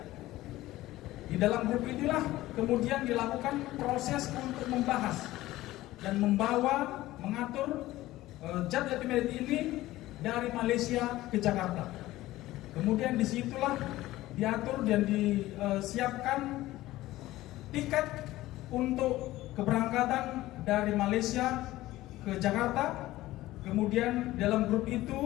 Di dalam grup inilah kemudian dilakukan proses untuk membahas dan mengatur zat etimedet ini dari Malaysia ke Jakarta. Kemudian disitulah diatur dan disiapkan tiket untuk keberangkatan dari Malaysia ke Jakarta. Kemudian dalam grup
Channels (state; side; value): quieter; right; 16.6 dB